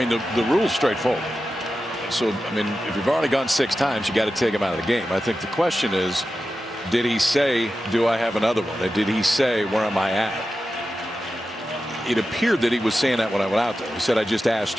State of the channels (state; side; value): normal; both; correlation 0.92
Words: the rule's straightforward. So, I mean, if you've already gone 6 times, you got to take him out of the game. I think the question is, did he say, do I have another one? Or did he say, where am I at? It appeared that he was saying that when I went out there. He said, I just asked